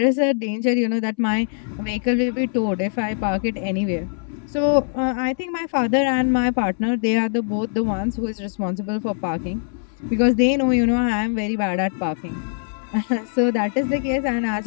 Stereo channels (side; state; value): right; silent; 64 dB below the other